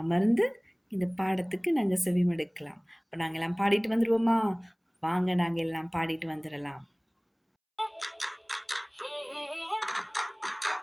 இந்த பாடத்துக்கு நாங்க செவிமடுக்கலாம். அப்ப நாங்க எல்லாம் பாடிட்டு வந்துருவோமா? வாங்க நாங்க எல்லாம் பாடிட்டு வந்துரலாம்.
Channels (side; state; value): both; identical; correlation 1.00